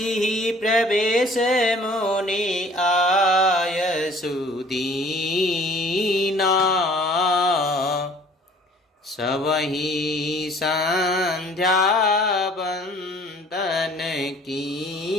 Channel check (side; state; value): both; normal; correlation 0.53